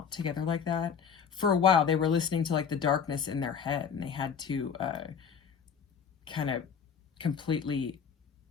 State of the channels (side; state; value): right; quieter; 6.9 dB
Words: together like that. For a while, they were listening to like the darkness in their head, and they had to kind of completely